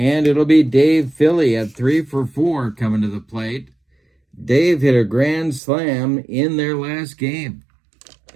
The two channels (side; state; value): left; drops out; at 5.6 s